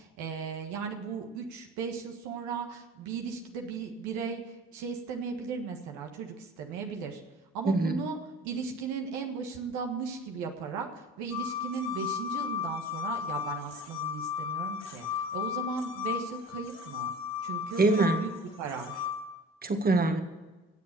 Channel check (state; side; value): normal; both; correlation 0.41